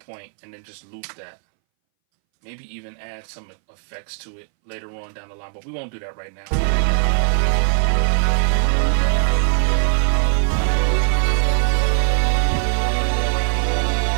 and then just loop that. Maybe even add some effects to it later on down the line, but we won't do that right now.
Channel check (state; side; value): silent; left; 63 dB below the other